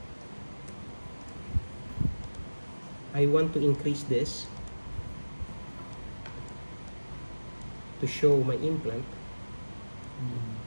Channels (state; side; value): inverted; both; correlation -1.00